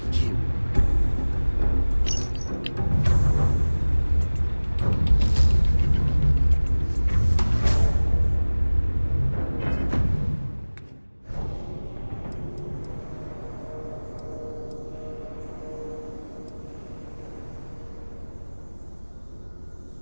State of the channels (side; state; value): both; inverted; correlation -1.00